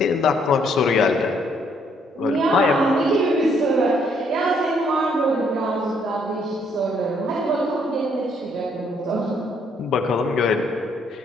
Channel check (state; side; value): normal; both; correlation 0.69